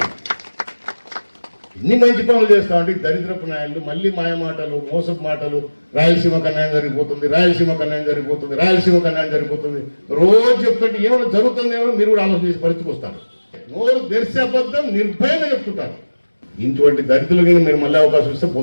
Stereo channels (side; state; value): both; inverted; correlation -1.00